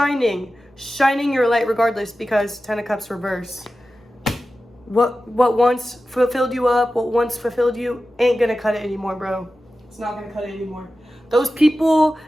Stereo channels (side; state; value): both; normal; correlation 0.94